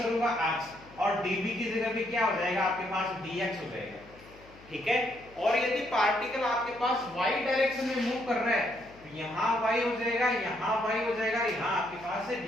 x, और dv की जगह भी क्या हो जाएगा आपके पास dx हो जाएगा। ठीक है, और यदि पार्टिकल आपके पास y डायरेक्शन में मूव कर रहा है, तो यहाँ y हो जाएगा, यहाँ y हो जाएगा, यहाँ आपके पास है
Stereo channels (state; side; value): noise; left; hum, 23 dB below the sound